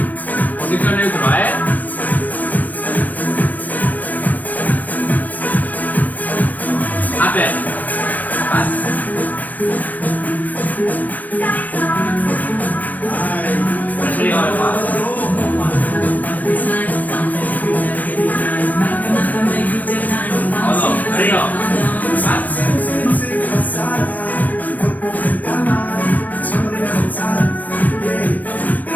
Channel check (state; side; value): late; right; 0.081 ms